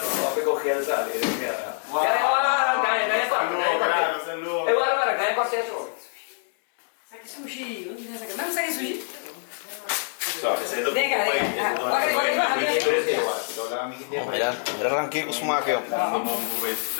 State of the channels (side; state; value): right; silent; 62 dB below the other